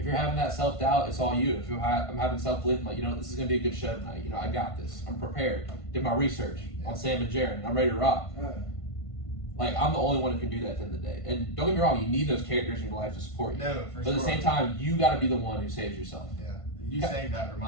you're having that self-doubt, it's all you. If I'm having self-belief, I'm like, this is gonna be a good show tonight. I got this. I'm prepared. Did my research on Sam and Jaron. I'm ready to rock. Like I'm the only one who can do that at the end of the day. And don't get me wrong, you need those characters in your life to support you. No, for but sure. at the same time, you got to be the one who saves yourself. Yeah, you saying that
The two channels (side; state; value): right; late; 1.5 ms